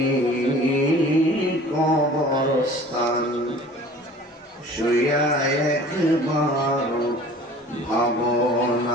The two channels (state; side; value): normal; both; correlation 0.46